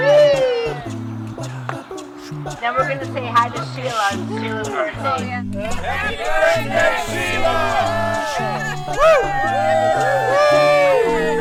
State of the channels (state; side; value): identical; both; correlation 1.00